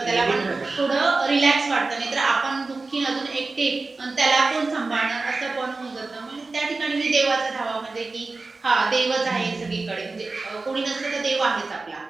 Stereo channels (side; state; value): left; quieter; 3.7 dB